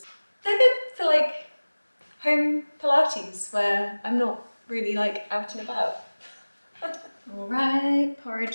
They're good for like home Pilates where I'm not really like out and about. All right,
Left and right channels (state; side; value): inverted; both; correlation -1.00